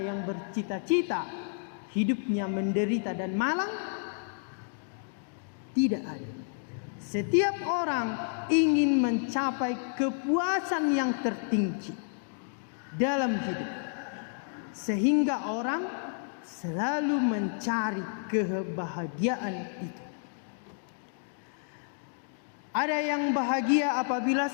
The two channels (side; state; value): right; silent; digital silence